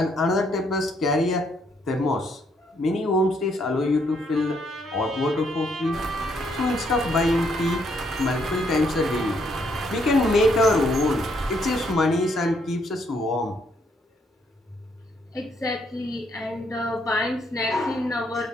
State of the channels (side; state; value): both; normal; correlation 0.72